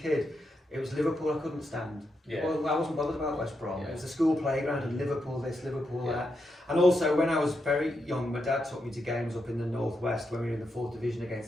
it was Liverpool I couldn't stand. Yeah. Well, I wasn't bothered about West Brom. Yeah. It was the school playground and Liverpool this, Liverpool that. And also, when I was very young, my dad took me to games up in the Northwest when we were in the 4th Division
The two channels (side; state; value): both; normal; correlation 0.84